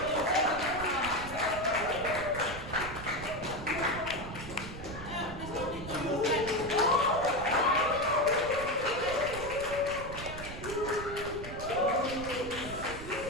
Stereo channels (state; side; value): noise; right; rumble, 11 dB below the sound